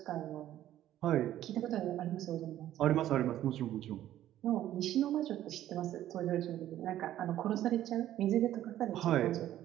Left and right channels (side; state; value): left; quieter; 12.7 dB